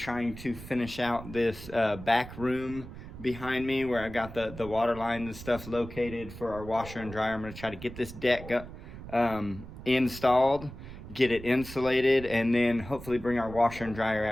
to finish out this back room behind me where I got the water lines and stuff located for our washer and dryer. I'm going to try to get this deck installed, get it insulated, and then hopefully bring our washer and dryer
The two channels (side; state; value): right; noise; rumble, 13 dB below the sound